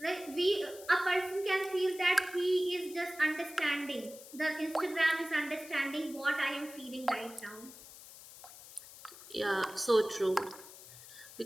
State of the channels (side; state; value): left; noise; hiss, 17 dB below the sound